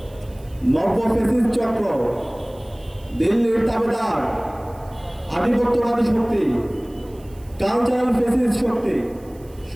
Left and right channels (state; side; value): noise; right; hiss, 28 dB below the sound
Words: নব্য ফ্যাসিস্ট চক্র, দিল্লির তাবেদার, আধিপত্যবাদী শক্তি, কালচারাল ফ্যাসিস্ট শক্তি